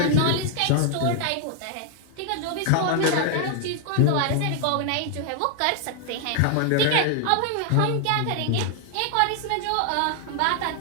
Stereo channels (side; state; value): both; different; correlation 0.00